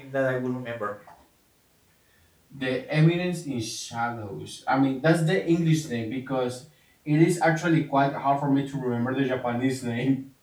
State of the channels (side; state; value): both; identical; correlation 1.00